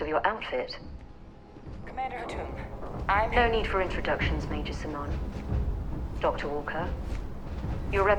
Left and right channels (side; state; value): both; identical; correlation 1.00